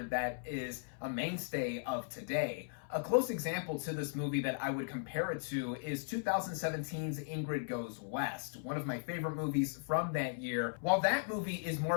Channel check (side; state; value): right; silent; 53 dB below the other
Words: that is a mainstay of today. A close example to this movie that I would compare it to is 2017's Ingrid Goes West, one of my favorite movies from that year. While that movie is more